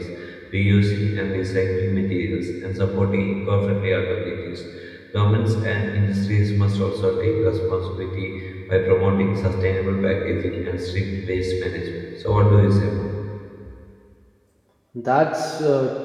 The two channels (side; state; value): both; identical; correlation 1.00